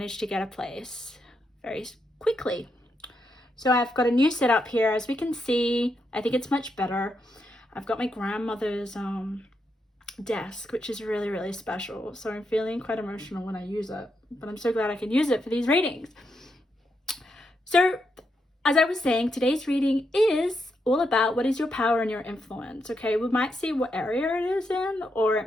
to get a place very quickly. So I've got a new setup here. As we can see, I think it's much better. I've got my grandmother's desk, which is really, really special. So I'm feeling quite emotional when I use it, but I'm so glad I can use it for these readings. So as I was saying, today's reading is all about what is your power and your influence. Okay, we might see what area it is in, or it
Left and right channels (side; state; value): both; normal; correlation 0.82